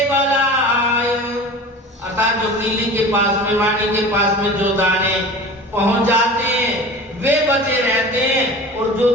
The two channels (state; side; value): normal; both; correlation 0.36